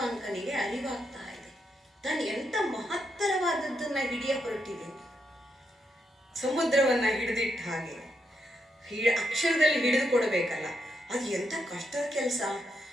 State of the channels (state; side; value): normal; both; correlation 0.81